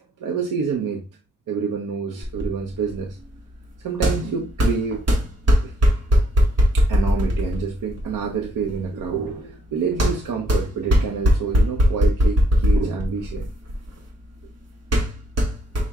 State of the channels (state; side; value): normal; both; correlation 0.69